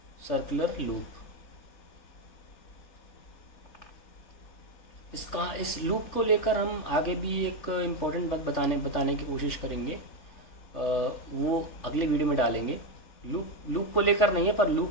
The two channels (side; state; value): right; late; 3.4 ms